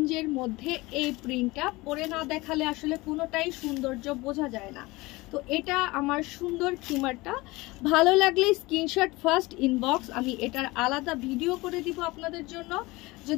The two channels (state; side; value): quieter; right; 21.8 dB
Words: মধ্যে এই প্রিন্টটা পরে না দেখালে আসলে কোনোটাই সৌন্দর্য বোঝা যায় না। তো এটা আমার সুন্দর খিমারটা। ভালো লাগলে স্ক্রিনশট ফার্স্ট ইনবক্স, আমি এটার আলাদা ভিডিও করে দিব আপনাদের জন্য